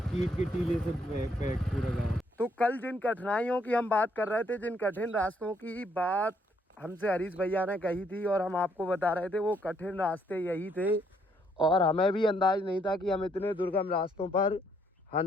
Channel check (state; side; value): normal; both; correlation 0.70